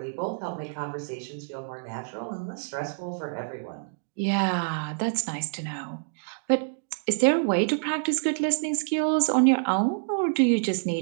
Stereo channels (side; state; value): left; silent; digital silence